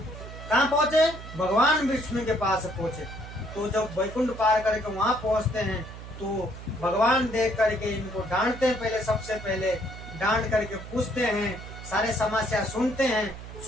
कहाँ पहुंचे, भगवान विष्णु के पास पहुंचे। तो जब वैकुंठ पार करके वहां पहुंचते हैं, तो भगवान देख करके इनको डांटते हैं, पहले सबसे पहले डांट करके पूछते हैं, सारे समस्या सुनते हैं,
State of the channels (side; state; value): right; noise; hum, 13 dB below the sound